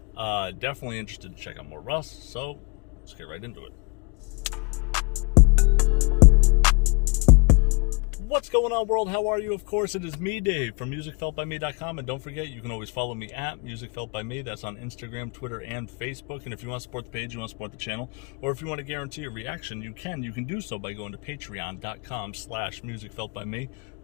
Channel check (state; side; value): quieter; right; 32.5 dB